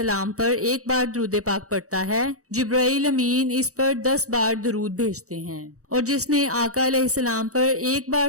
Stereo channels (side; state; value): left; late; 0.65 ms